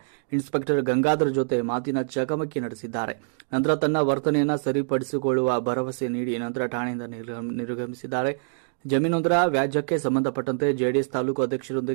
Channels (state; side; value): silent; left; digital silence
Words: ಇನ್ಸ್ಪೆಕ್ಟರ್ ಗಂಗಾಧರ್ ಜೊತೆ ಮಾತಿನ ಚಕಮಕಿ ನಡೆಸಿದ್ದಾರೆ. ನಂತರ ತನ್ನ ವರ್ತನೆಯನ್ನು ಸರಿಪಡಿಸಿಕೊಳ್ಳುವ ಭರವಸೆ ನೀಡಿ ನಂತರ ಠಾಣೆಯಿಂದ ನಿರ್ಗಮಿಸಿದ್ದಾರೆ. ಜಮೀನೊಂದರ ವ್ಯಾಜ್ಯಕ್ಕೆ ಸಂಬಂಧಪಟ್ಟಂತೆ ಜೆಡಿಎಸ್ ತಾಲೂಕು